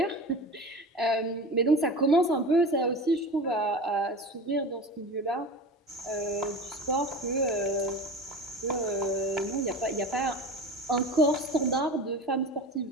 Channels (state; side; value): normal; both; correlation 0.32